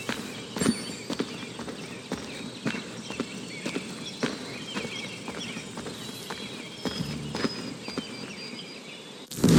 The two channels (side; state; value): both; identical; correlation 1.00